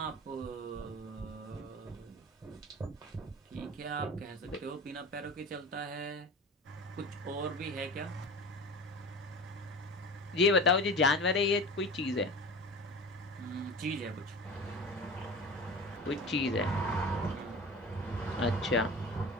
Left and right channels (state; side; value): normal; both; correlation 0.34